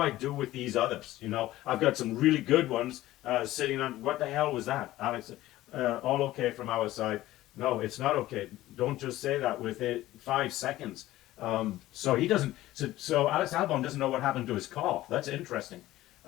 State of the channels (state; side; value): quieter; right; 15.8 dB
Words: do with these others? I've got some really good ones sitting on. What the hell was that, Alex? All okay from our side? No, it's not okay. Don't just say that with 5 seconds. So he doesn't. So Alex Albon doesn't know what happened to his car. That's interesting.